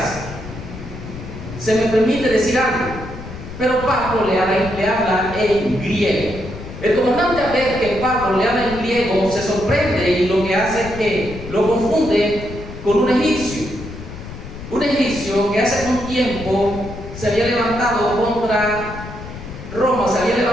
Se me permite decir algo, pero Pablo le habla en griego. El comandante, al ver que Pablo le habla en griego, se sorprende y lo que hace es que lo confunde con un egipcio. Un egipcio que hace un tiempo se había levantado contra Roma, se había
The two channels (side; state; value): left; noise; rumble, 12 dB below the sound